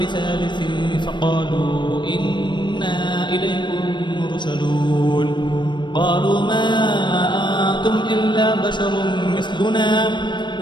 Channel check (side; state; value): right; late; 0.22 ms